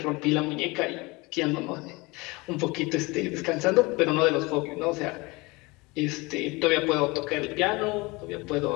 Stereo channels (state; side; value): quieter; right; 24.4 dB